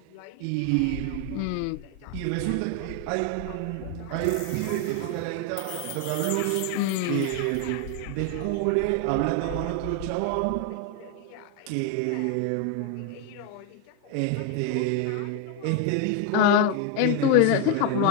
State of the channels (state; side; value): different; both; correlation 0.01